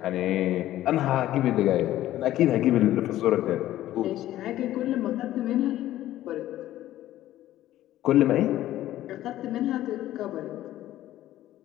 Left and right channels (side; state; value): right; quieter; 14.0 dB